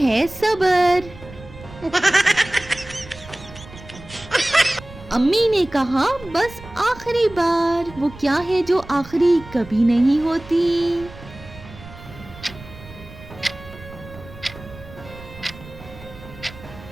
सब्र। अम्मी ने कहा बस आखिरी बार। वो क्या है जो आखिरी कभी नहीं होती?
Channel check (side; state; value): right; noise; rumble, 17 dB below the sound